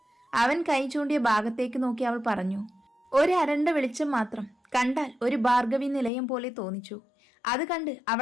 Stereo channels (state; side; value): drops out; right; at 6.1 s